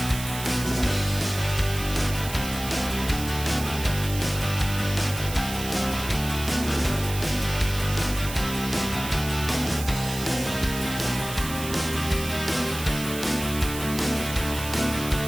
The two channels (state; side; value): noise; right; hiss, 10 dB below the sound